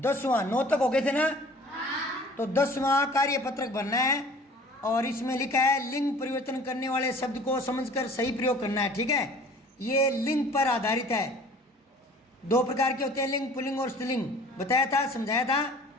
10वां 9 तक हो गए थे ना। तो 10वां कार्य पत्रक भरना है और इसमें लिखा है लिंग परिवर्तन करने वाले शब्द को समझकर सही प्रयोग करना है। ठीक है, ये लिंग पर आधारित है। 2 प्रकार के होते हैं, लिंग पुल्लिंग और स्त्रीलिंग, बताया था, समझाया था।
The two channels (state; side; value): normal; both; correlation 0.48